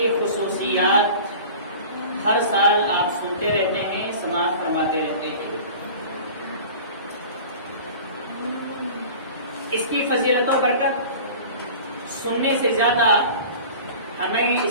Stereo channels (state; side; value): inverted; both; correlation -0.39